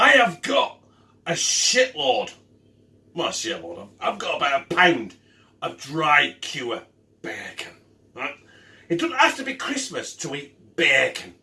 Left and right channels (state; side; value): identical; both; correlation 1.00